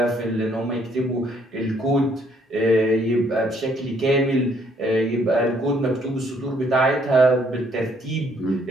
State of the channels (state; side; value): normal; both; correlation 0.66